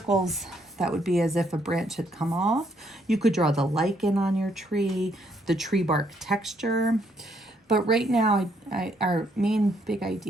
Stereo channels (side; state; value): both; normal; correlation 0.71